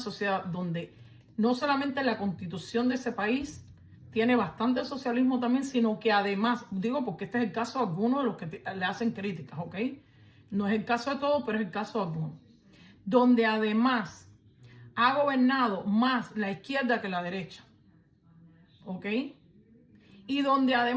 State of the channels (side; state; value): both; identical; correlation 1.00